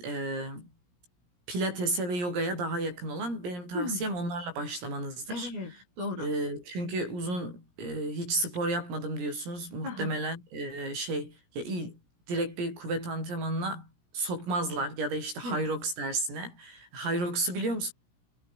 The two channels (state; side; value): late; left; 17 ms